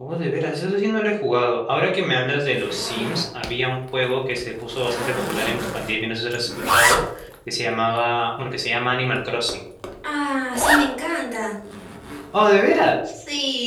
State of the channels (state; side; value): identical; both; correlation 1.00